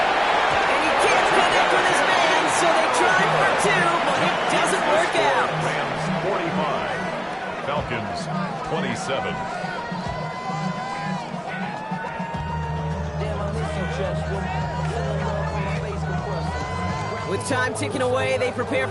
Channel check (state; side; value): identical; both; correlation 1.00